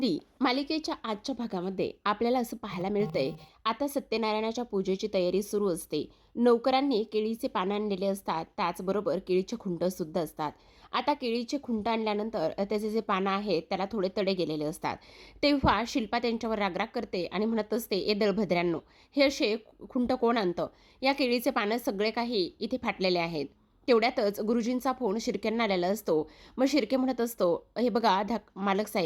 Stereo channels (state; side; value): identical; both; correlation 1.00